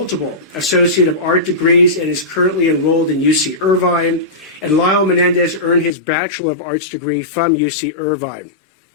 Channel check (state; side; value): drops out; right; at 5.9 s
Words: Associate of Art degrees and is currently enrolled in UC Irvine. And Lyle Menendez earned his Bachelor of Arts degree from UC Irvine.